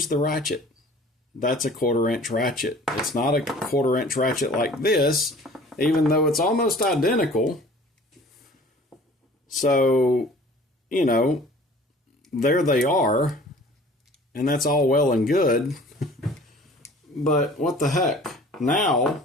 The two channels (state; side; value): normal; both; correlation 0.48